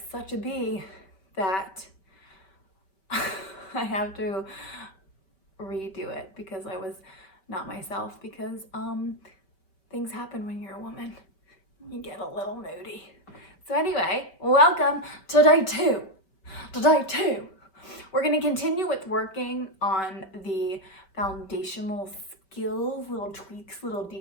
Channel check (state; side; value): late; right; 5.2 ms